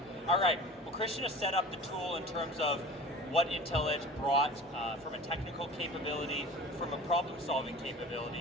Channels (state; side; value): normal; both; correlation 0.39